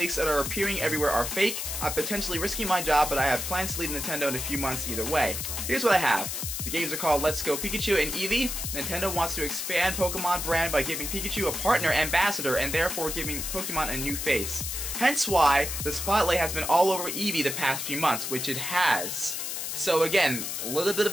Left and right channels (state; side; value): noise; left; hiss, 4 dB below the sound